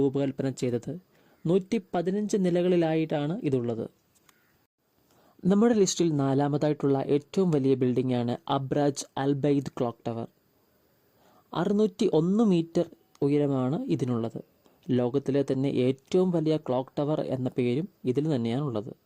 ചെയ്തത്. 115 നിലകളിലായിട്ടാണ് ഇതുള്ളത്. നമ്മുടെ ലിസ്റ്റിൽ 4ാമതായിട്ടുള്ള ഏറ്റവും വലിയ ബിൽഡിംഗാണ് അബ്രാജ് അൽബൈദ് ക്ലോക്ക് ടവർ. 601 മീറ്റർ ഉയരമാണ് ഇതിനുള്ളത്. ലോകത്തിലെ തന്നെ ഏറ്റവും വലിയ ക്ലോക്ക് ടവർ എന്ന പേരും ഇതിൽ തന്നെയാണുള്ളത്.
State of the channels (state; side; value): identical; both; correlation 1.00